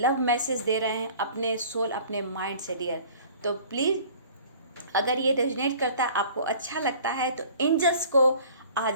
मैसेज दे रहे हैं अपने सोल, अपने माइंड से डियर। तो प्लीज़ अगर ये रेजोनेट करता है, आपको अच्छा लगता है, तो एंजल्स को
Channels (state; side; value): inverted; both; correlation -0.48